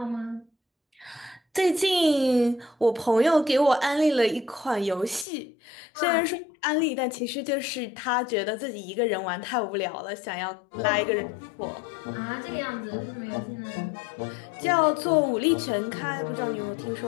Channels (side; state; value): right; drops out; at 5.2 s